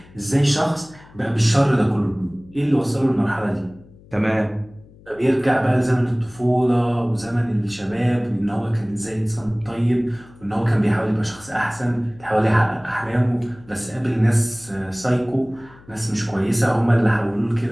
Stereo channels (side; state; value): left; noise; hum, 24 dB below the sound